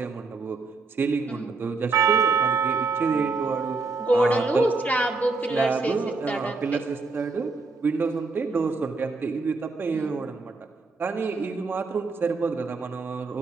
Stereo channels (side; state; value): left; quieter; 3.9 dB